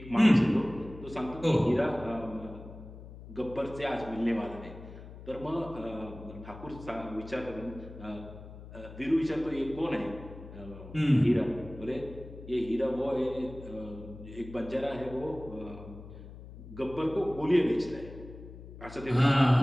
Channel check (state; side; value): noise; left; hum, 15 dB below the sound